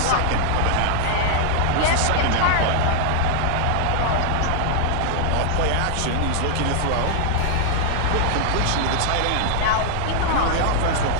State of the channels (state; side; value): different; both; correlation 0.00